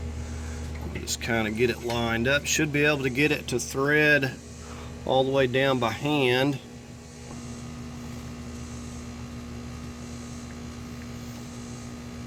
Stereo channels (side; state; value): both; identical; correlation 1.00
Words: Just kind of get it lined up. Should be able to get it to thread all the way down by hand.